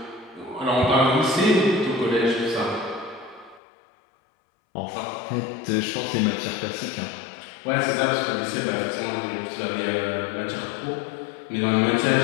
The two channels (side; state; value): right; drops out; at 3.6 s